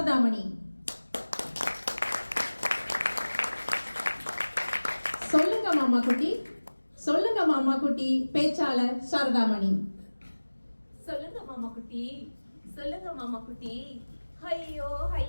சொல்லுங்க மாமா குட்டி, சொல்லுங்க மாமா குட்டி. பேச்சாளர் சாரதாமணி. சொல்லுங்க மாமா குட்டி, சொல்லுங்க மாமா குட்டி. ஐயோ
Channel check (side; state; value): both; inverted; correlation -1.00